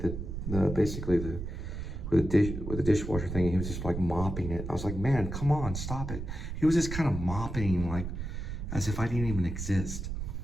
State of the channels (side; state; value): right; noise; rumble, 6 dB below the sound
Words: dishwasher thing, and he was just like mopping it. I was like, man, come on, stop it. He was just kind of mopping like as if I didn't even exist.